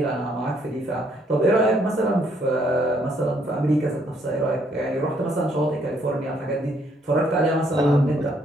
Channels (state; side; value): normal; both; correlation 0.69